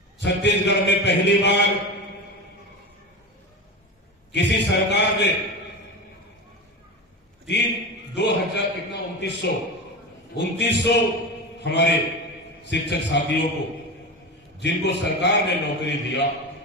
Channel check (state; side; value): normal; both; correlation 0.25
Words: छत्तीसगढ़ में पहली बार किसी सरकार ने 2900 हमारे शिक्षक साथियों को, जिनको सरकार ने नौकरी दिया,